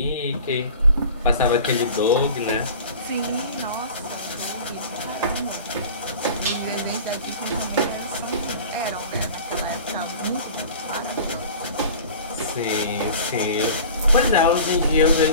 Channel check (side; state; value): both; inverted; correlation -0.41